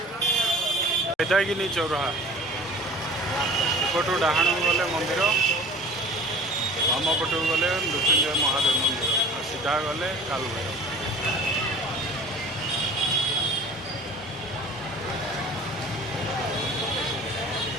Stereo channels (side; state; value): both; normal; correlation 0.43